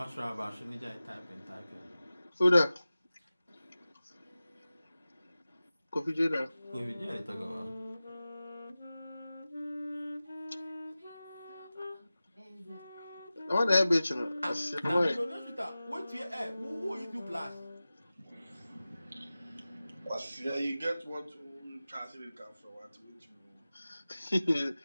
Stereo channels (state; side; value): inverted; both; correlation -0.96